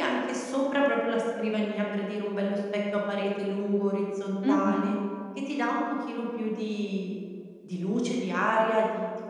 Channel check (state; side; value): identical; both; correlation 1.00